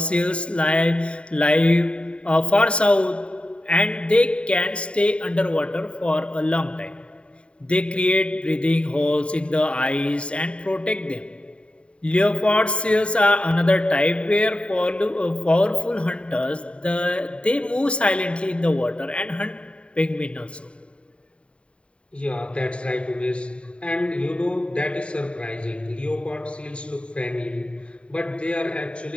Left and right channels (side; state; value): right; late; 0.058 ms